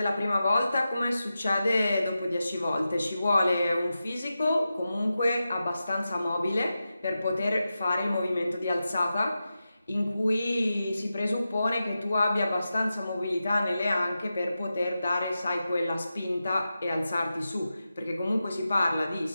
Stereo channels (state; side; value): inverted; both; correlation -0.92